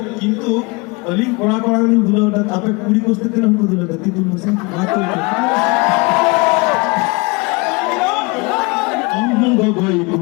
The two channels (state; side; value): quieter; right; 27.5 dB